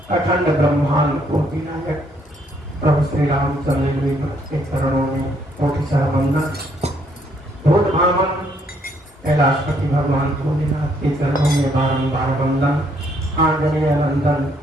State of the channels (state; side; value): normal; both; correlation 0.69